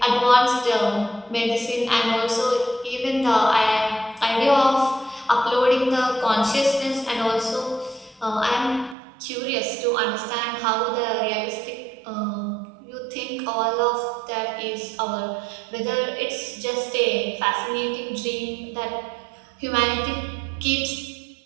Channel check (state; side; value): drops out; left; at 9.0 s